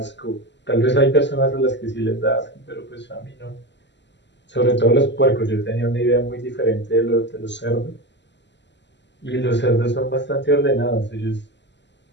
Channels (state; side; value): late; right; 0.51 ms